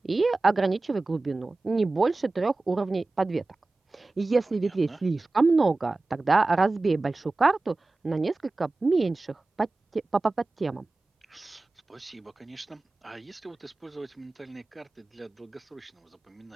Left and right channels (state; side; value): quieter; left; 3.3 dB